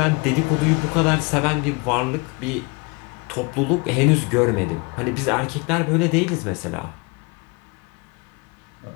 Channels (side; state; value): right; quieter; 29.2 dB